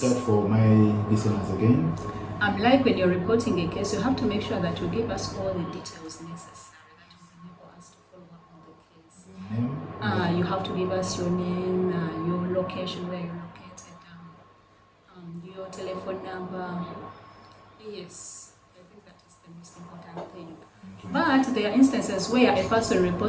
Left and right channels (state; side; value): identical; both; correlation 1.00